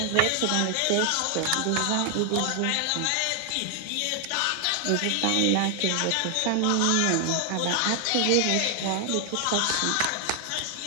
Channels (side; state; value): both; different; correlation 0.00